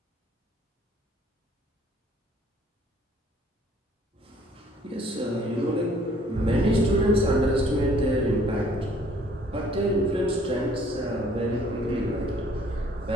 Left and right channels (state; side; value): normal; both; correlation 0.59